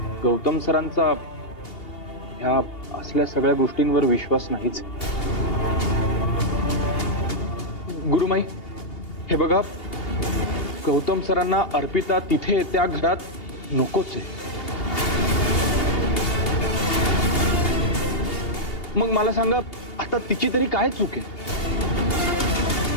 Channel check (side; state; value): right; late; 2.8 ms